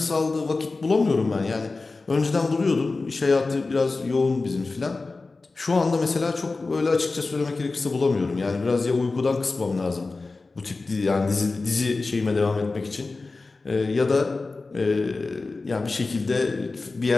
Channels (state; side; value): quieter; right; 3.7 dB